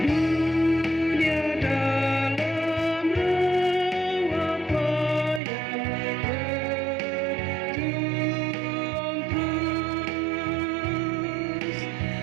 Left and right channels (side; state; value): left; drops out; at 5.4 s